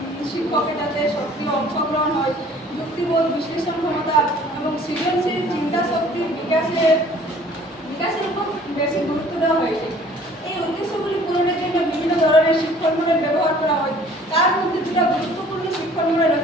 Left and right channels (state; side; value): normal; both; correlation 0.53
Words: শিক্ষকের যাতে সক্রিয় অংশগ্রহণ হয়, যুক্তিবোধ, বিশ্লেষণ ক্ষমতা এবং সৃজনশীল চিন্তা শক্তির বিকাশের উপর বেশি গুরুত্ব দেওয়া হয়েছে। এই উদ্দেশ্যগুলি পূরণের জন্য বিভিন্ন ধরনের শিক্ষণ মডেল ব্যবহার করা হয়। তার মধ্যে দুটো গুরুত্বপূর্ণ শিক্ষণ মডেল